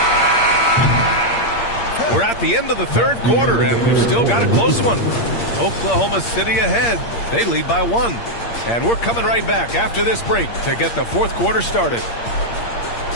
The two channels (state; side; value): late; right; 8.6 ms